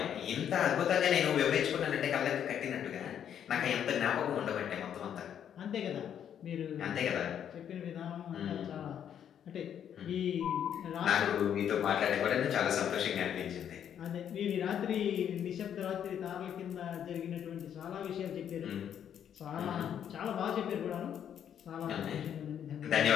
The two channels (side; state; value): right; quieter; 9.2 dB